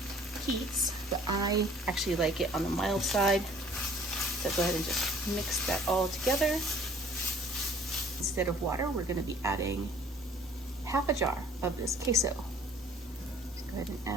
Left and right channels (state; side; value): normal; both; correlation 0.54